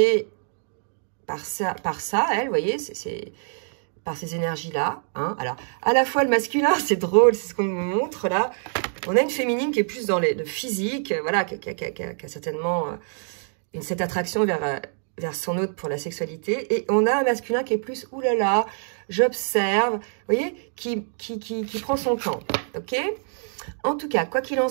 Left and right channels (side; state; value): left; silent; 62 dB below the other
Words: par ça elle, vous voyez, c'est par ces énergies-là. Hein? Alors, à la fois le masculin, c'est drôle, c'est ce qu'on me montre là. On a une féminine qui est plus dans le physique, voilà, qui a certainement cette attraction vers son autre pour la sexualité. Et on a un masculin qui est plus, oulala, j'observe, vous voyez, qui prend son temps, ok? En tout cas, quoi qu'il en